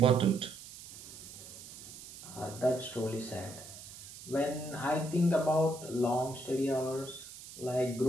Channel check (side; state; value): right; noise; hiss, 15 dB below the sound